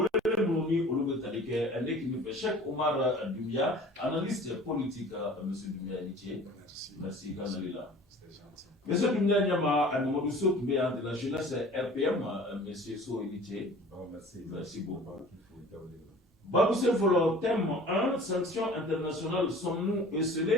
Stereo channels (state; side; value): normal; both; correlation 0.45